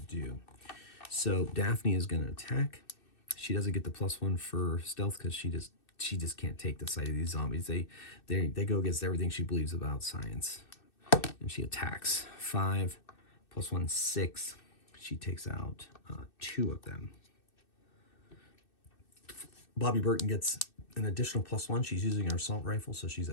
So Daphne is going to attack. She doesn't get the +1 for stealth because she just can't take the sight of these zombies. They go against everything she believes about science. And she attacks. 5 +1, 6. She takes out 2 of them. Bobby Burton gets an additional +1. She's using her assault rifle, so she's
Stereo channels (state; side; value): late; right; 2.6 ms